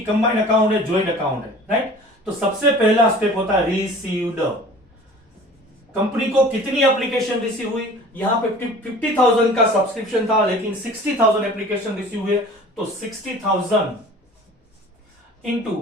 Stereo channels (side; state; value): both; normal; correlation 0.44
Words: कंबाइंड अकाउंट है, ज्वाइंट अकाउंट है, राइट? तो सबसे पहला स्टेप होता है रिसीव्ड. कंपनी को कितनी एप्लीकेशन रिसीव हुई? यहां पे 50,000 का सब्सक्रिप्शन था, लेकिन 60,000 एप्लीकेशन रिसीव हुए, तो 60,000 इंटू